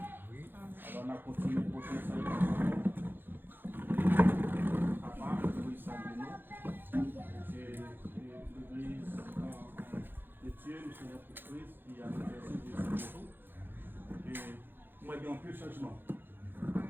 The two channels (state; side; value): late; left; 0.098 ms